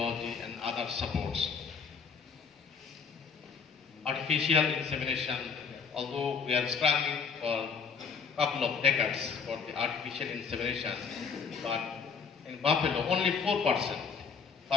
and other supports. Artificial insemination, although we are struggling for a couple of decades for the artificial insemination, but in buffalo only 4%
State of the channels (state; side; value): quieter; right; 5.8 dB